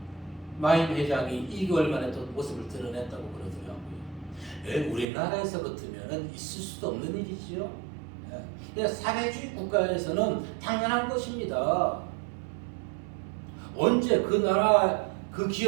마임 회장이 2개월 만에 또 모습을 드러냈다고 그러더라고요. 우리나라에서 같으면 있을 수도 없는 일이지요. 사회주의 국가에서는 당연한 것입니다. 언제 그 나라 그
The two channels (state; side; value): drops out; left; at 5.1 s